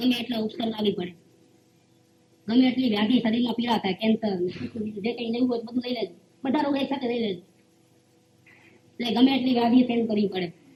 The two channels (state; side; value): identical; both; correlation 1.00